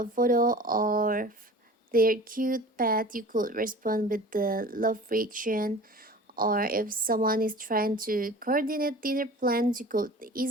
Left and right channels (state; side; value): normal; both; correlation 0.41